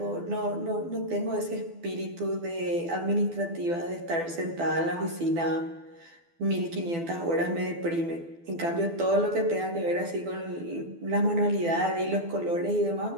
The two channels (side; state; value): left; late; 12 ms